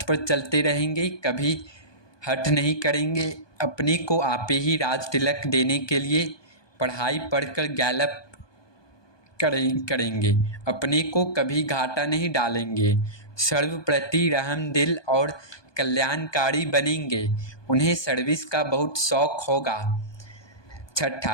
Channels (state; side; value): late; right; 1.2 ms